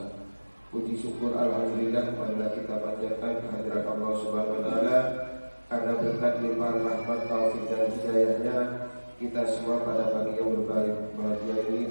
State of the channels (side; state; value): both; inverted; correlation -1.00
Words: Puji syukur alhamdulillah marilah kita panjatkan kehadirat Allah Subhanahu wa taala, karena berkat limpahan rahmat taufik dan hidayahnya kita semua pada pagi yang berbahagia ini